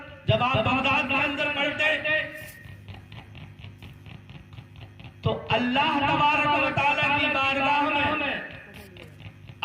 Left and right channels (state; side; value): identical; both; correlation 1.00